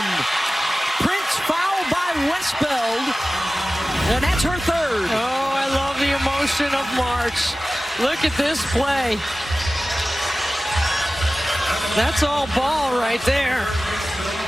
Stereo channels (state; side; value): normal; both; correlation 0.96